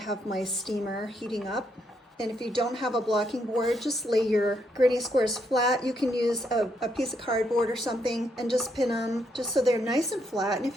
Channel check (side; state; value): both; normal; correlation 0.76